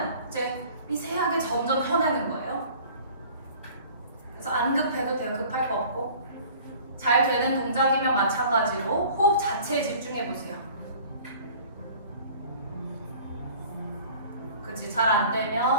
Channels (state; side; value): inverted; both; correlation -0.48